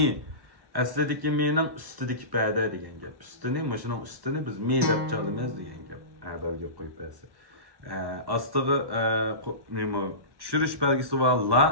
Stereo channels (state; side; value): late; left; 1.1 ms